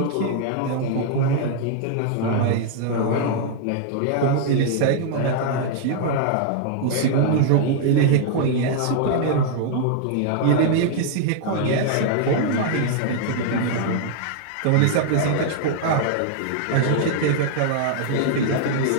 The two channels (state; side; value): different; both; correlation 0.00